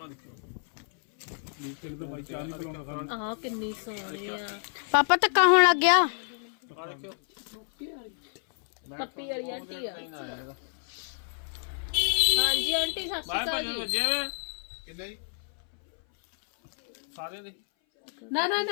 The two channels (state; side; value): silent; right; 57 dB below the other